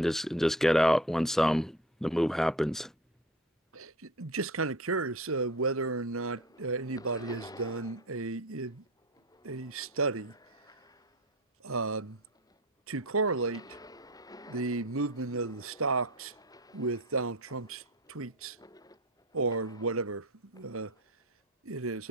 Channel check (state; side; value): normal; both; correlation 0.33